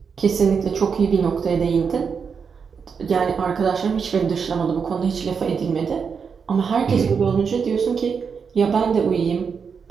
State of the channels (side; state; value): left; quieter; 6.1 dB